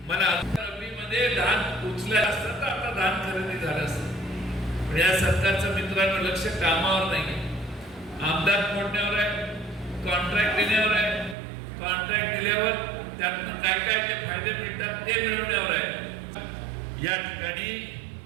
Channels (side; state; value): left; drops out; at 11.4 s